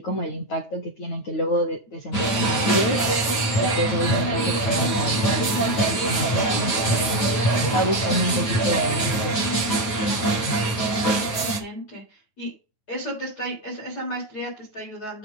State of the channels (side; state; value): right; late; 9.1 ms